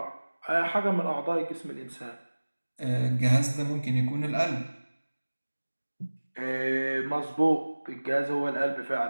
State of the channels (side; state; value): both; inverted; correlation -1.00